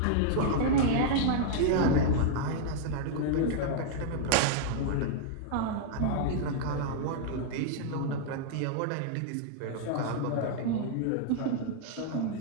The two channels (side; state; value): both; different; correlation -0.01